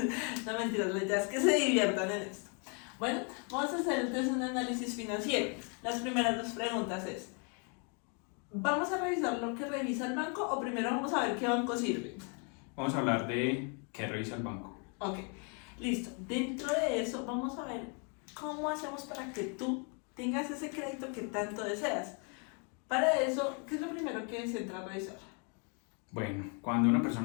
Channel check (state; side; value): quieter; right; 37.7 dB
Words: No, mentiras, la idea es que se diviertan en esto. Bueno, vamos a hacer entonces un análisis financiero. Las primeras dos preguntas es: ¿vamos a revisar lo que revisa el banco o primero vamos a ver qué banco sirve? Vamos a hablar de qué revisa el banco. Ok, listo. Dentro de eso vamos a ver cómo hacemos para que tú tengas ese crédito que tanto deseas. Para eso, ¿qué es lo primero que se entra a revisar? Bueno, cuando una